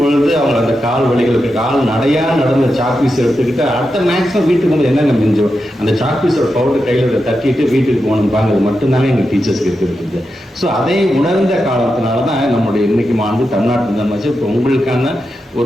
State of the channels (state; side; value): normal; both; correlation 0.88